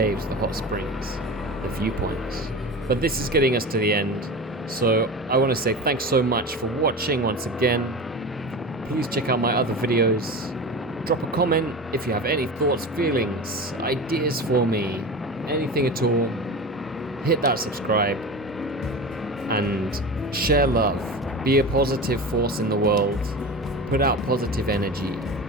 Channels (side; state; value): both; normal; correlation 0.29